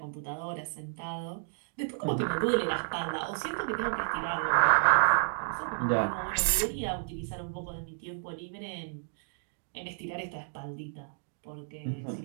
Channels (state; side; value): silent; left; digital silence